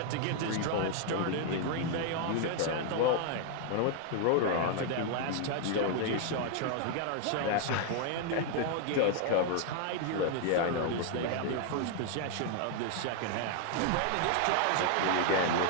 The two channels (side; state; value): both; different; correlation 0.00